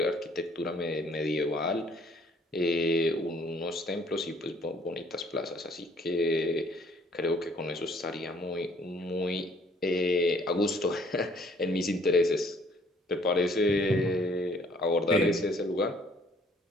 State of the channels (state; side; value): normal; both; correlation 0.61